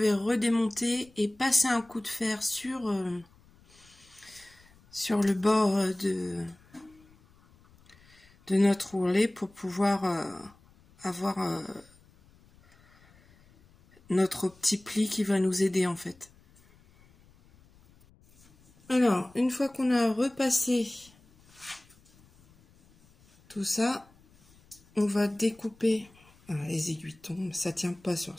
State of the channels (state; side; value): noise; left; rumble, 29 dB below the sound